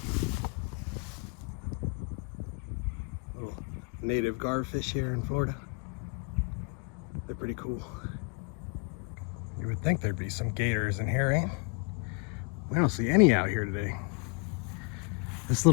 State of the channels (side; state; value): right; quieter; 32.9 dB